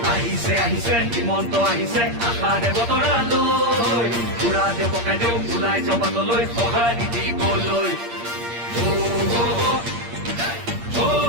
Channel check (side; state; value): left; late; 8.6 ms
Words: আহিছে আহিছে হিমন্ত আহিছে আশাৰে বতৰা লৈ পুৰা দে পকাই দেও ওলাই জবাতলৈ সঁহাৰি দিবলৈ